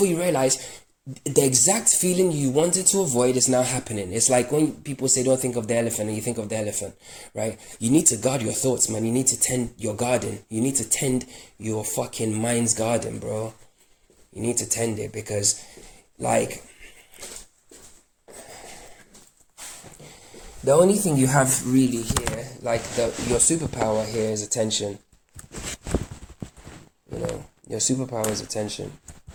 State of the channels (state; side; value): identical; both; correlation 1.00